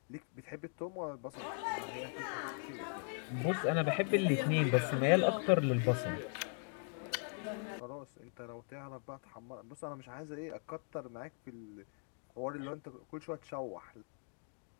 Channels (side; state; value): right; silent; 52 dB below the other